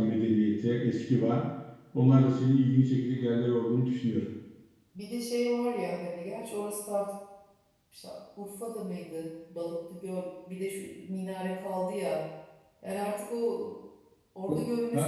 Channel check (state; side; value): identical; both; correlation 1.00